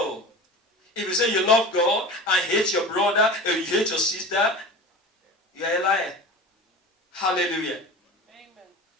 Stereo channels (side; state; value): both; normal; correlation 0.34